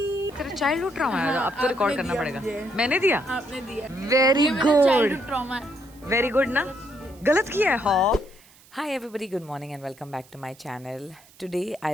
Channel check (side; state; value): right; noise; hiss, 26 dB below the sound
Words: तेरा चाइल्डहुड ट्रॉमा है, अब तो रिकॉर्ड करना पड़ेगा. मैंने दिया? आपने दिया. Very good. Trauma. Very good ना? गलत किया है हाँ. Hi everybody, good morning and welcome back to my channel. Today